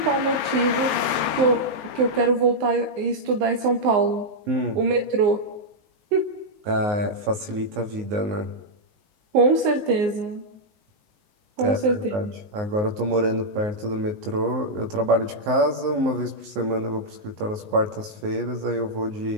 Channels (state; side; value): late; left; 19 ms